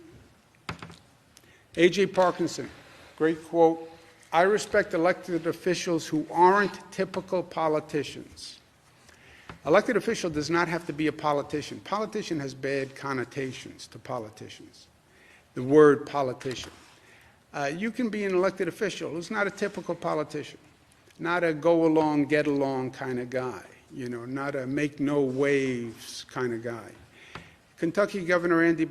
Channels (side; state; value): both; identical; correlation 1.00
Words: A.J. Parkinson, great quote, "I respect elected officials who aren't typical politicians." Elected official does not have to be a politician. Politician has bad connotations to politicians, the word politician. You can be an elected official who's not a typical politician, not a go-along, get-along kind of guy, not a make-no-waves kind of guy. Kentucky Governor Andy